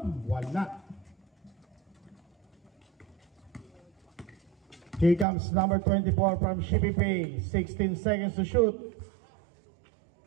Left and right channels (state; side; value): drops out; left; at 5.2 s